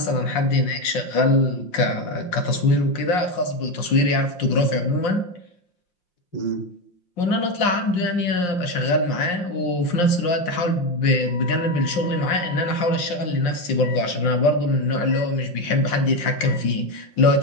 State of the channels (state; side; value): late; right; 5.7 ms